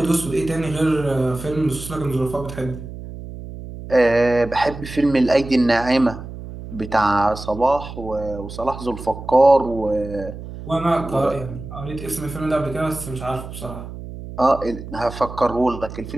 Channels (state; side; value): noise; right; hum, 11 dB below the sound